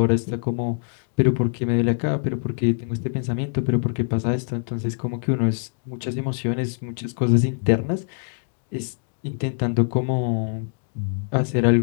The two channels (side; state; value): right; silent; 57 dB below the other